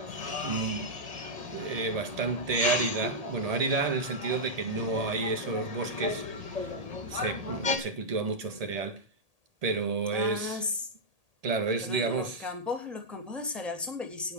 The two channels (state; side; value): late; left; 1.8 ms